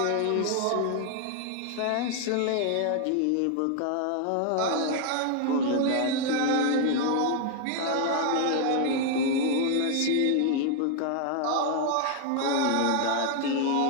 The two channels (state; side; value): different; both; correlation 0.00